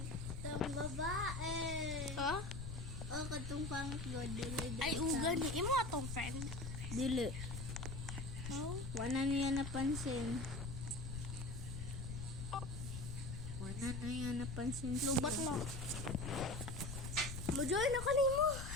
Itong babae. Ha? O, katong pangit go. Dili. Ay, uga ni. Imo atong friend. Dili. Oh. Wa na niya napansin. Wa na niya napansin. Lubat na. Mo-join ako nimo.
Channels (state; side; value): noise; left; rumble, 6 dB below the sound